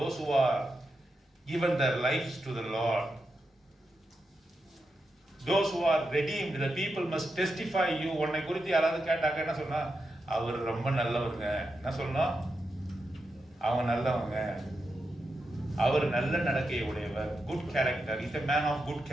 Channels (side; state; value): both; normal; correlation 0.87